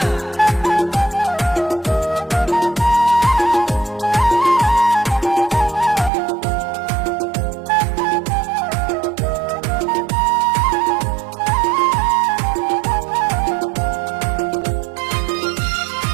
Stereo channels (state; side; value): drops out; left; at 6.1 s